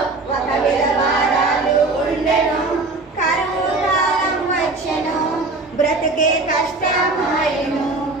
ఒక విధవరాలు ఉండెను. కరువు కాలం వచ్చెను, బ్రతుకే కష్టమాయెను.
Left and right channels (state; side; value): quieter; left; 3.4 dB